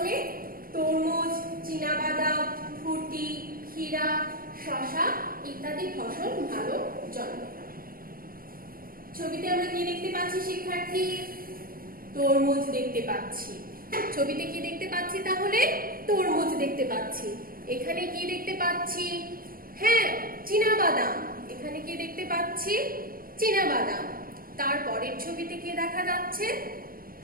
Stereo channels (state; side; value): late; left; 0.42 ms